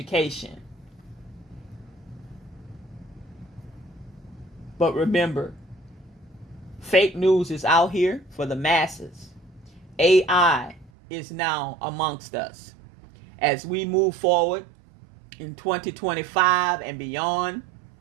But remember, fake news is out here for the masses. AI is now amongst us. As we move forward in 2025 and beyond,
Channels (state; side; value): drops out; left; at 10.9 s